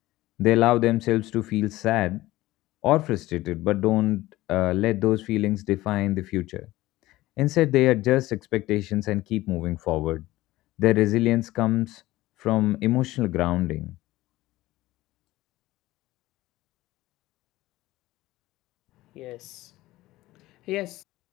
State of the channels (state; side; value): quieter; right; 17.4 dB